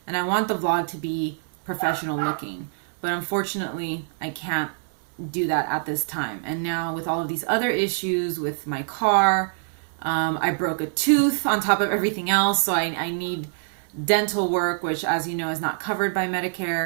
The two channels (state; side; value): silent; left; 62 dB below the other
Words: and I want the vlog to be professional looking. But unfortunately, I can't do that at this time. And now with all of these other issues with my car, I broke a tooth on top of everything else, so I need dental work, which, as you know, is not covered by